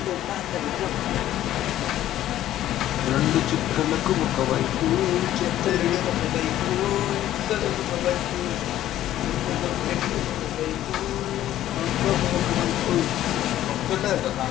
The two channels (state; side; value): quieter; right; 13.0 dB